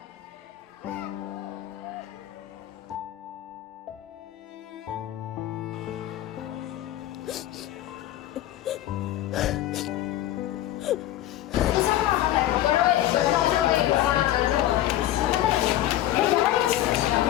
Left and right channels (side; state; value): right; quieter; 13.7 dB